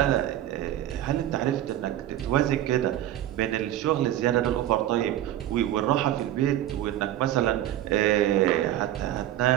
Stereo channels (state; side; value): quieter; left; 12.9 dB